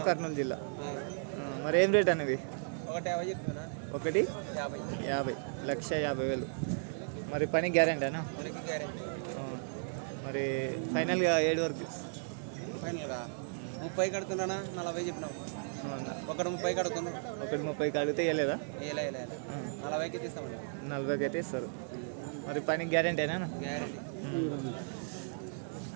కర్నూలు జిల్లా. మరి ఏం రేట్ అనేవి? 1,50,000, 1,50,000. మరి పని గ్యారెంటీనా? మరి ఫైనల్గా 7 వరకు 30 కడుతున్నా, 40 చెప్పినావు. 1,30 కడుతున్నా, 1,30 అడిగితే ఇవ్వలేదా? 40కి తీస్తామండి. 40కి అయితే ఇస్తారు. మరి పని గ్యారెంటీనా?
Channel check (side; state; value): left; silent; 54 dB below the other